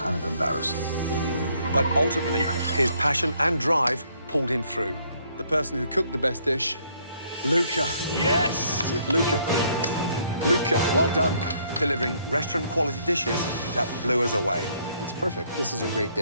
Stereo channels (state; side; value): inverted; both; correlation -0.67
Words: of embarrassing. But ultimately, his passion and drive pulled him through. The person who cooked the best dish, Luca. Yes! Luca. Luca, well done. Delivering restaurant-quality dishes that blew us away. It's perfect. This is a great